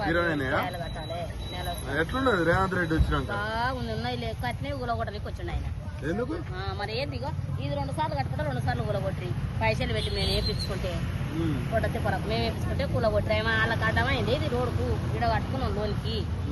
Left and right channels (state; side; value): identical; both; correlation 1.00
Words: కిరాయిలు కట్టాలి. ఎట్లున్నది రేవంత్ రెడ్డి వచ్చినాక? బాగుంది. ఉన్నాయి లేక కట్టినవి ఊలగొట్టడానికి వచ్చిండు ఆయన. ఎందుకు మరి ఏందిగో ఇది 2 సార్లు కట్టుకుంటే 2 సార్లు కూలగొట్టి పైసలు పెట్టి మేము వేపించుకుంటే కొట్టతే పొరకు మేము వేపించుకుంటే కూలగొట్టి వాళ్ళకి అడ్డమైంది. ఇది రోడ్డుకు ఇడ కట్టుకున్నాం లోన్కి